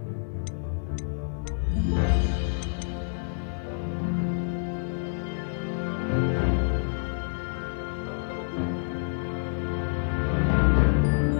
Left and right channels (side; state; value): right; silent; digital silence